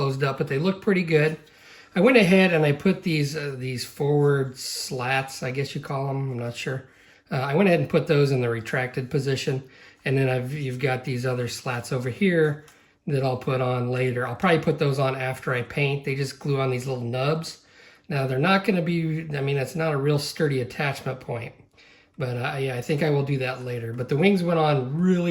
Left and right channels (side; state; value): both; identical; correlation 1.00